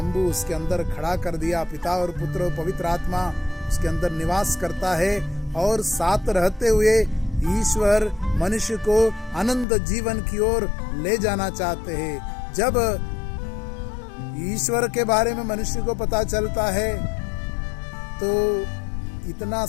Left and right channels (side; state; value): right; drops out; at 9.7 s